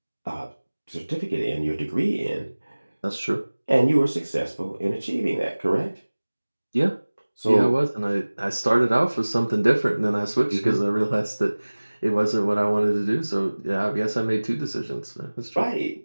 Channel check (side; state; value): both; inverted; correlation -1.00